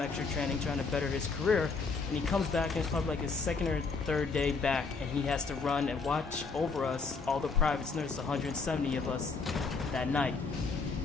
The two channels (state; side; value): quieter; right; 4.5 dB